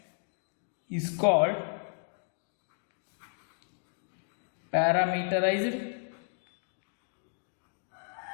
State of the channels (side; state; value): right; silent; digital silence